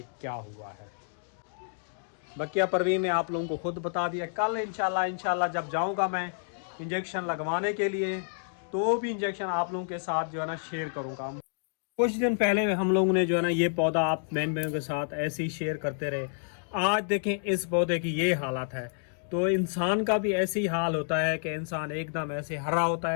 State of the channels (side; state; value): right; silent; digital silence